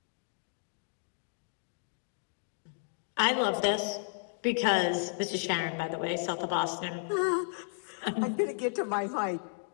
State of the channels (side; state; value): right; silent; digital silence